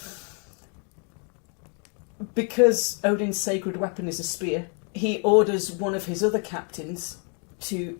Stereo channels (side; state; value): right; quieter; 39.7 dB